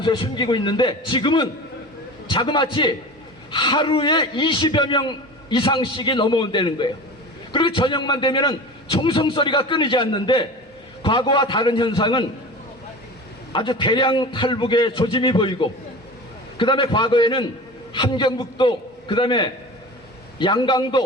숨기고 있는데 지금은 자그마치 하루에 20여 명 이상씩이 넘어온다는 거예요. 그리고 저녁만 되면은 총성소리가 끊이지 않는데 과거와 다른 현상은 아주 대량 탈북의 조짐이 보이고, 그 다음에 과거에는 함경북도, 그 다음에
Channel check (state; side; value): normal; both; correlation 0.34